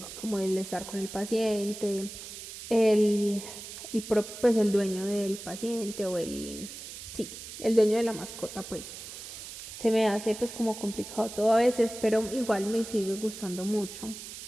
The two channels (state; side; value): noise; right; hiss, 11 dB below the sound